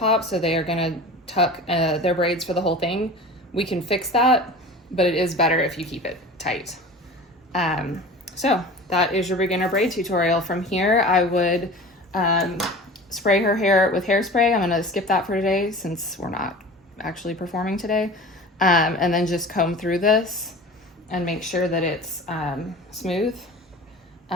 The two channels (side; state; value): both; normal; correlation 0.38